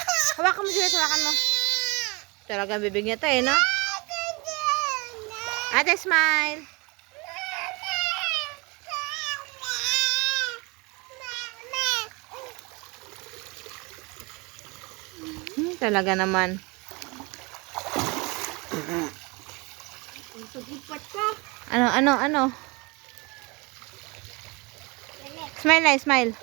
Hawakan mo, Juliet, hawakan mo. Talagang bibig niya to, no? Ate, smile. Talaga naman. Ano? Smile na, smile.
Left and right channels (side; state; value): left; quieter; 27.4 dB